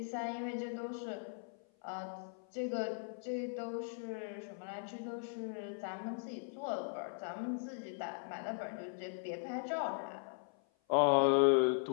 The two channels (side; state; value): right; silent; 52 dB below the other